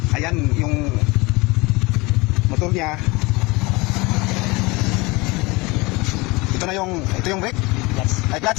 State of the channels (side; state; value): right; quieter; 24.3 dB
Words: Ayan yung motor niya. Ito yung brake. Yes. Ay,